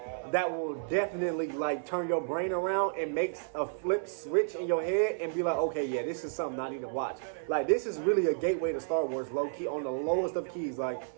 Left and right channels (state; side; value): silent; left; 57 dB below the other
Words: that will definitely like turn your brain around and makes a flip switch in your head and be like, okay, yeah, this is something I need to watch. Like, this is really a gateway to Star Wars, low key, on the lowest of keys. Like,